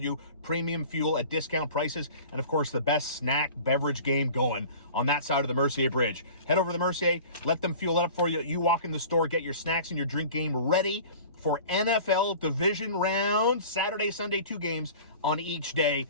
Premium fuel at discount prices. And, of course, the best snack beverage game going on that side of the Mercier Bridge. Head over to the Mercier. Let them fuel it up for you. You walk in the store, get your snacks and your drink game ready for NFL division round, Saturday, Sunday, 2 games on each day.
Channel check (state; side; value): inverted; both; correlation -0.42